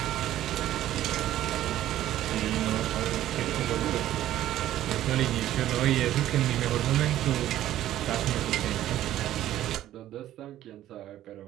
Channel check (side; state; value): left; quieter; 13.1 dB